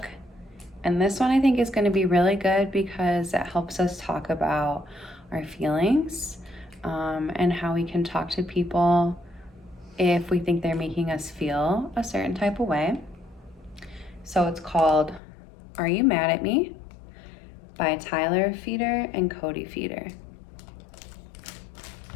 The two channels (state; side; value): drops out; right; at 15.2 s